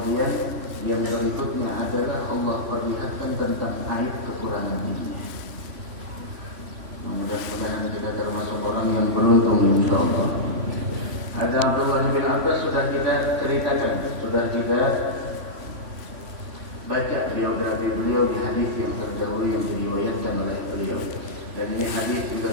yang berikutnya adalah Allah perlihatkan tentang aib kekurangan dirinya. Mudah-mudahan kita termasuk orang yang beruntung, insyaallah. Ada Abdullah bin Abbas sudah kita ceritakan, sudah kita baca biografi beliau di hadis yang terdahulu yang diriwayatkan oleh beliau. Dan ini hadis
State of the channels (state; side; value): late; left; 3.1 ms